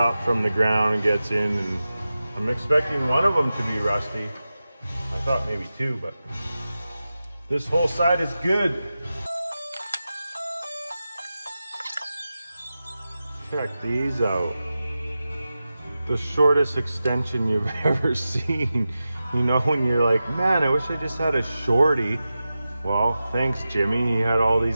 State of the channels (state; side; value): inverted; both; correlation -0.93